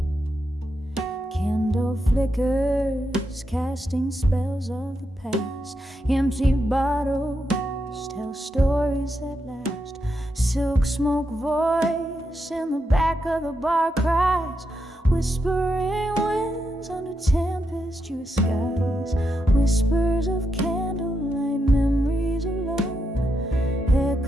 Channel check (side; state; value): both; normal; correlation 0.84